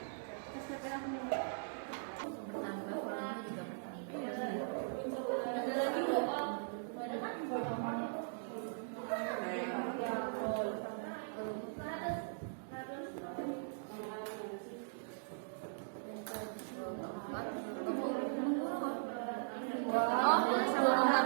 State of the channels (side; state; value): left; silent; digital silence